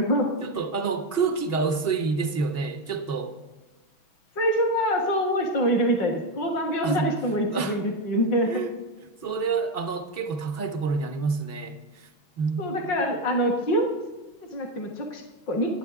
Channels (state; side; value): late; right; 6.1 ms